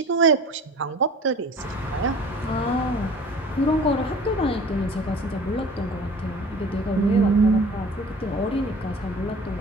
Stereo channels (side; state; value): both; normal; correlation 0.44